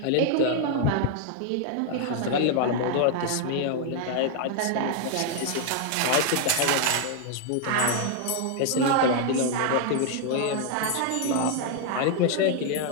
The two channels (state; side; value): different; both; correlation 0.00